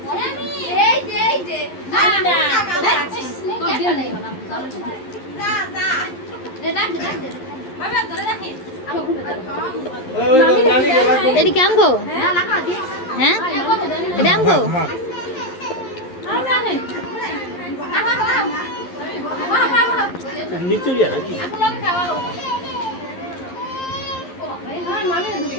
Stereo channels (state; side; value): late; right; 11 ms